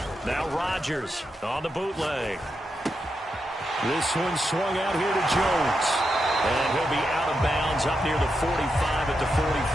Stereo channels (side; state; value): both; normal; correlation 0.86